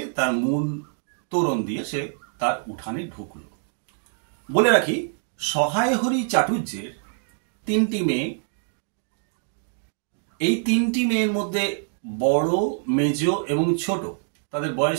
তার মূল তোরণ দিয়ে সে তার উঠানে ঢুকল। বলে রাখি, সহায় হরি চাটুর্যের 3টি মেয়ে। এই 3টি মেয়ের মধ্যে বড়, মেজ এবং ছোট, তাদের বয়স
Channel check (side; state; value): left; silent; digital silence